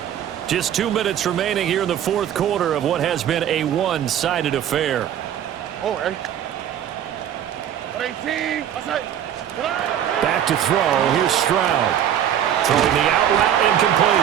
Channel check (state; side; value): quieter; left; 10.2 dB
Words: Just 2 minutes remaining here in the fourth quarter of what has been a one-sided affair. Back to throw. Here's Stroud. Throwing the out route